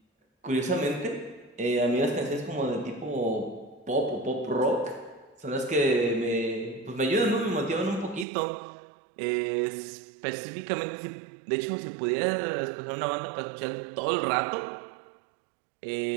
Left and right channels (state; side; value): drops out; left; at 8.2 s